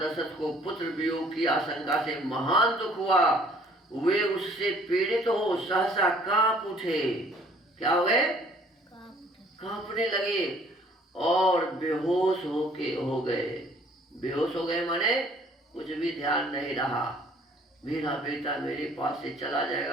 दशरथ को पुत्र वियोग की आशंका से महान दुख हुआ। वे उससे पीड़ित हो सहसा कांप उठे। क्या हो गए? कांपने लगे और बेहोश हो गए। बेहोश हो गए माने कुछ भी ध्यान नहीं रहा। मेरा बेटा मेरे पास से चला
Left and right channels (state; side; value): normal; both; correlation 0.57